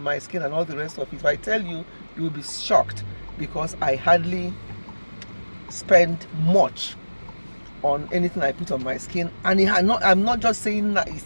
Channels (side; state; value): both; inverted; correlation -1.00